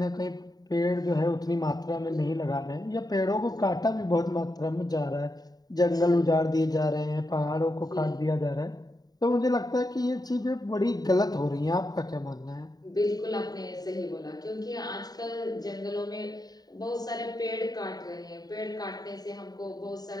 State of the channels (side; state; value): right; late; 0.19 ms